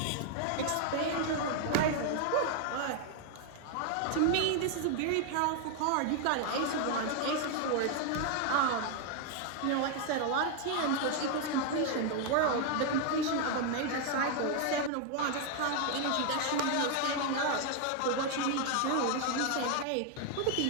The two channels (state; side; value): different; both; correlation 0.00